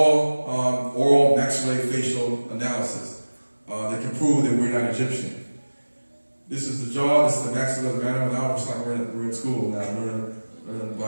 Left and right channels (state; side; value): inverted; both; correlation -1.00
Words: oral maxillofacial analysis that can prove that we're not Egyptian. This is the jaw, this is the maxilla mandible. Now it's like we're in school now, learning